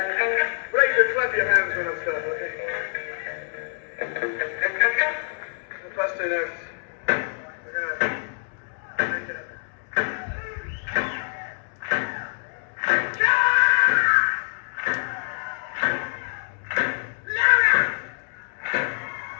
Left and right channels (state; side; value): silent; right; 56 dB below the other